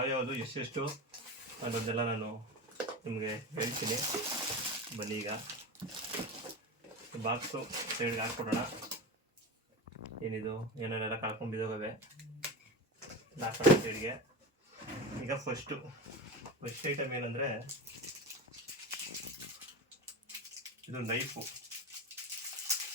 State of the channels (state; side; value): normal; both; correlation 0.25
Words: ಎಷ್ಟೆಷ್ಟು ಅನ್ನೋದೆಲ್ಲ ನಾನು ನಿಮಗೆ ಹೇಳ್ತೀನಿ. ಬನ್ನಿ ಈಗ ಬಾಕ್ಸು ಸೈಡ್ಗೆ ಹಾಕ್ಕೊಡೋಣ. ಏನಿದು ಏನೇನೆಲ್ಲ ಕಳ್ಕೊಂಡಿದ್ದಾವೆ ಹಾಕೋಣ ಸೈಡ್ಗೆ. ಈಗ ಫಸ್ಟ್ ಐಟಮ್ ಏನಂದರೆ ಇದು ನೈಫು,